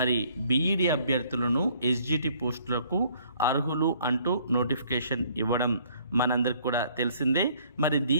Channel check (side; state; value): both; inverted; correlation -0.61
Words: బీఈడి అభ్యర్థులను ఎస్జిటి పోస్టులకు అర్హులు అంటూ నోటిఫికేషన్ ఇవ్వడం మనందరికి కూడా తెలిసిందే. మరి